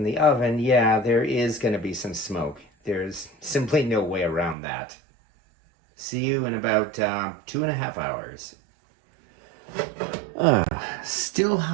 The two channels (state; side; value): drops out; left; at 4.5 s